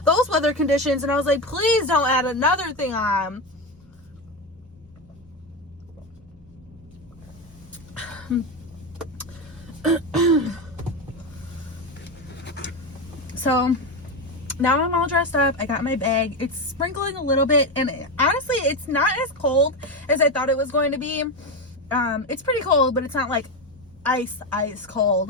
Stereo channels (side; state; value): both; normal; correlation 0.15